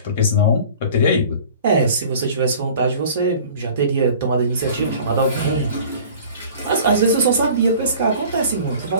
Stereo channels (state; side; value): inverted; both; correlation -0.45